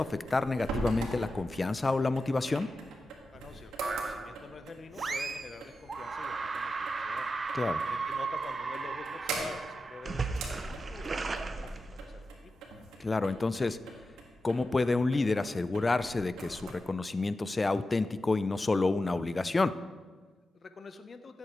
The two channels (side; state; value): both; normal; correlation 0.91